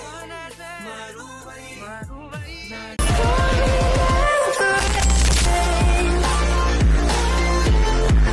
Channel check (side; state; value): both; identical; correlation 1.00